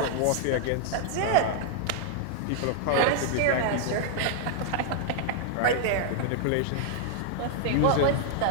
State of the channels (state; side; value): different; both; correlation 0.00